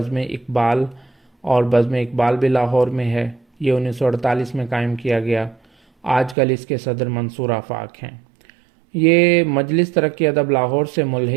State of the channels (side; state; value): left; drops out; at 6.4 s